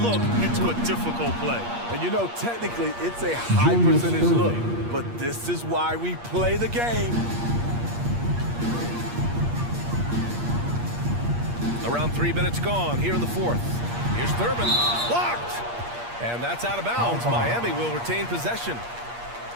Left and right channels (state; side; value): late; left; 8.5 ms